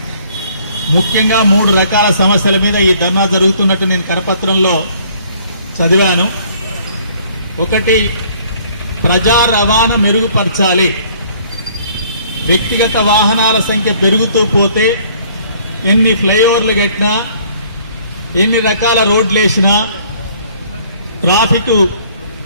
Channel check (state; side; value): inverted; both; correlation -0.59